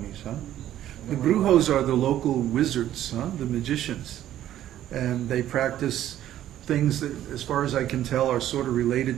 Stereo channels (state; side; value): quieter; left; 12.2 dB